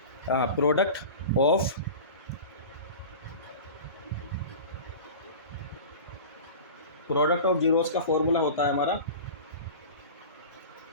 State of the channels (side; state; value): both; inverted; correlation -0.34